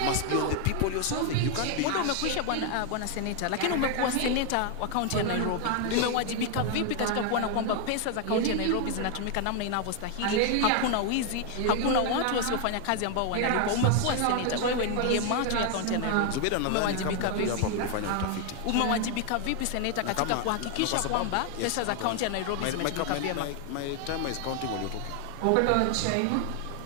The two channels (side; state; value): both; different; correlation 0.01